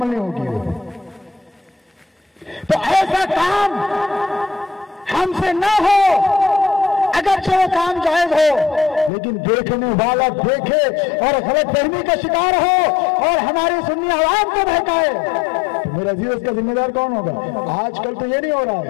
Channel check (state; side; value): drops out; right; at 9.1 s